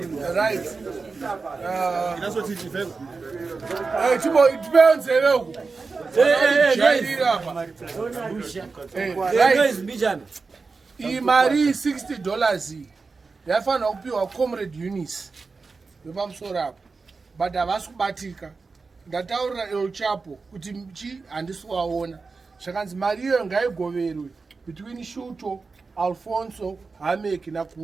Right. That's what you think. Hey, depends. Imari $60 yafana kupiwa Comrade Eunice wepamusoro apo but havasi kubatika. Ndataurira El Chapo kuti mchi handisi waona zvakanzi mari iyo ngaigoverwe between Shuto, Alfonso, Hamek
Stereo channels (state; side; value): quieter; left; 4.3 dB